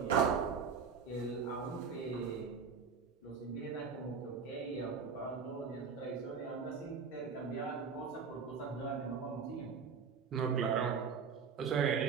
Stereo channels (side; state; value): left; quieter; 5.9 dB